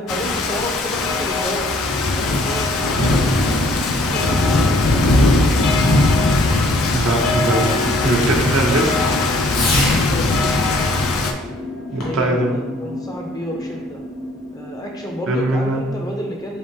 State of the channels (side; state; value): both; normal; correlation 0.61